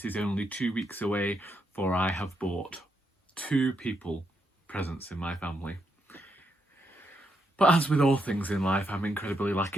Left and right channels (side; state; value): both; normal; correlation 0.80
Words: is only 2 weeks away, for I have bought 2 people presents in my family. But as with all things in life, I'm incredibly